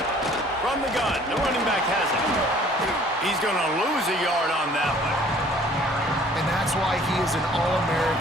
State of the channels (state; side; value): normal; both; correlation 0.54